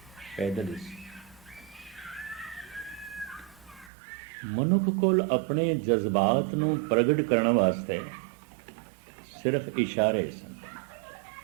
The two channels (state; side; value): drops out; left; at 3.9 s